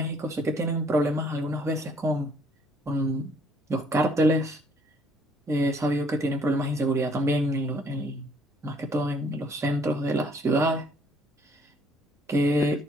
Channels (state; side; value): normal; both; correlation 0.63